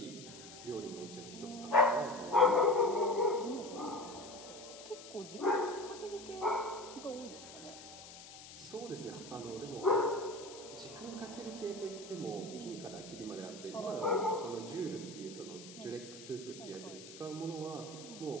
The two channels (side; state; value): left; noise; hiss, 15 dB below the sound